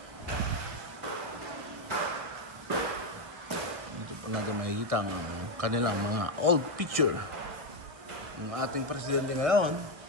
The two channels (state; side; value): late; left; 1.3 ms